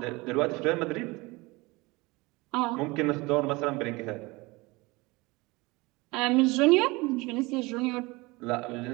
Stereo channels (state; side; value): quieter; left; 23.6 dB